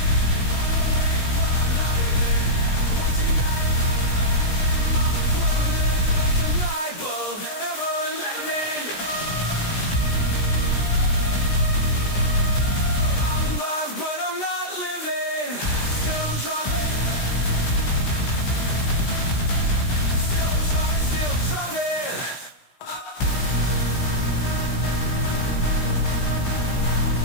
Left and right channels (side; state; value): right; late; 16 ms